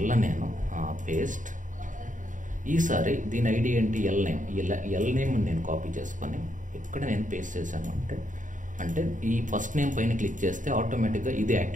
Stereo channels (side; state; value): left; late; 0.37 ms